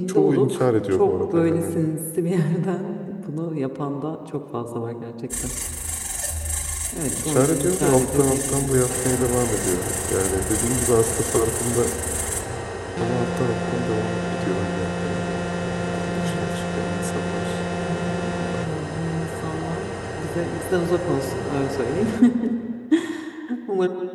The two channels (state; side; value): identical; both; correlation 1.00